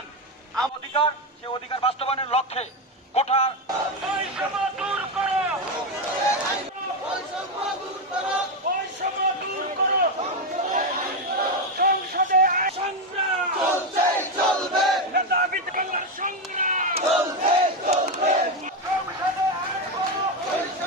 অধিকার, সে অধিকার বাস্তবায়নের লক্ষ্যে কোঠা বৈষম্য দূর করো, বৈষম্য দূর করো। সংসদে সংগ্রাম চলবে, নেতা বিদ্যালয়ের সংগ্রাম চলবে। সংসদে আইন করো,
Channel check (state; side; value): normal; both; correlation 0.09